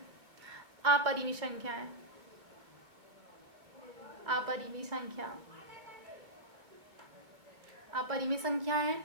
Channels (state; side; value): late; left; 2.4 ms